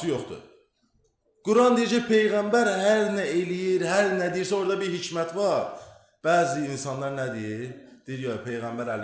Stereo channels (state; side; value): identical; both; correlation 1.00